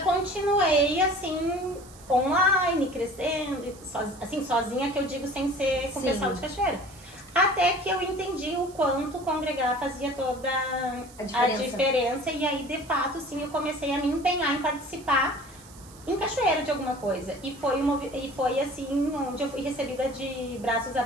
assim, online, crescendo, assim, sozinha, que eu digo, sem ser com o pessoal de Cachoeira. Até que eu entendi o quanto congregar fazia toda a diferença. E aí, de fato, sim, eu comecei a me empenhar em participar em Cachoeira de alguma coisa. E foi assim, onde eu fui recebida de braços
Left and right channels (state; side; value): noise; right; hiss, 22 dB below the sound